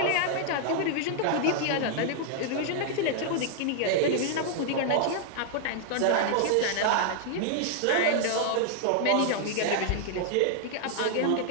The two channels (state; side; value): different; both; correlation -0.01